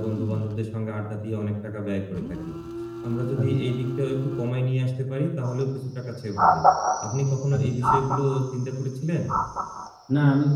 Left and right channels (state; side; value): identical; both; correlation 1.00